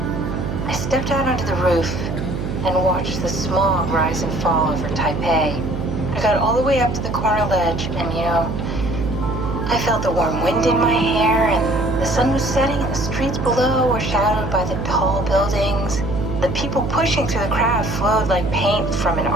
I stepped out onto the roof and watched the smog rise and fall over Taipei. I got all the way up to the corner ledge and, I felt the warm wind in my hair and the sun was setting and the streets below were shadowed by the tall buildings. The people pushing through the crowd flowed like paint from an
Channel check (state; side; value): noise; right; hum, 4 dB below the sound